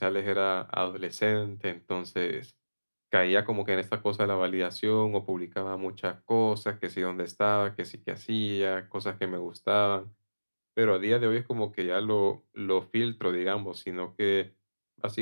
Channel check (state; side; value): inverted; both; correlation -1.00